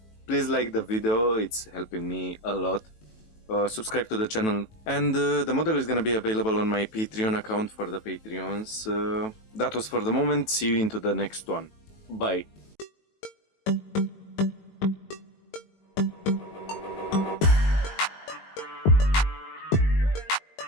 Please like the video, it's helping me a lot. Subscribe to the channel, and the model is gonna be available on my Patreon account for the Patreons. That was for the moment. See you into the next one. Bye.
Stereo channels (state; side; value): late; right; 20 ms